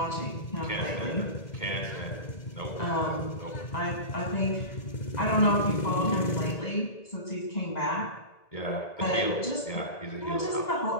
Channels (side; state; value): right; late; 2.0 ms